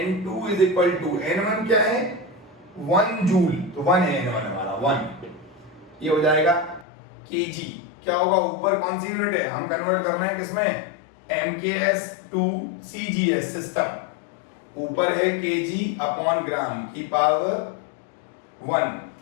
= N1 क्या है, 1 जूल, तो 1 है N1 हमारा 1, ये हो जाएगा केजी। क्या होगा, ऊपर कौन सी यूनिट है, हम कन्वर्ट कर रहे हैं किसमें, MKS टू CGS सिस्टम, ऊपर है केजी अपॉन ग्राम की power 1,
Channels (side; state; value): right; drops out; at 6.9 s